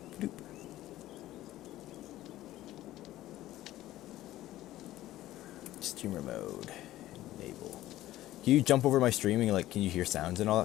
doop. Streamer mode. Enable. Can you jump over my streaming? Like, can you hear sounds and all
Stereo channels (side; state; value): right; quieter; 15.0 dB